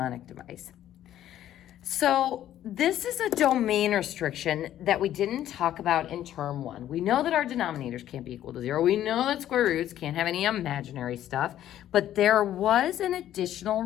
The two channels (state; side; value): quieter; right; 12.0 dB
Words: device. So this is a domain restriction that we didn't talk about in term 1. We know that our denominators can't be equal to 0. We know that square roots can't have any imaginary stuff, but there was an additional